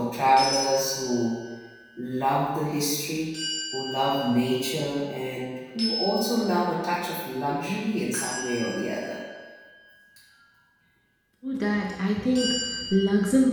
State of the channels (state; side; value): identical; both; correlation 1.00